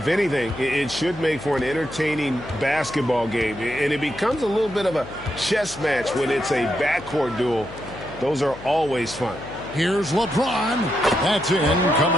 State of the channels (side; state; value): left; noise; hum, 15 dB below the sound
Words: anything, it should make for an entertaining basketball game. And it becomes a little bit of a chess match when it's a backcourt duel. Those are always fun. Here's LeBron. That's in,